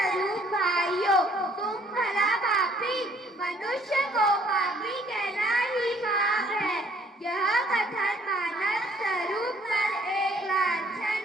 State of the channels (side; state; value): both; normal; correlation 0.61